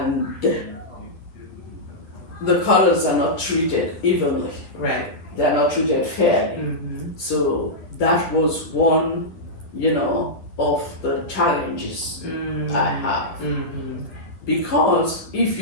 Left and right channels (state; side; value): late; right; 10 ms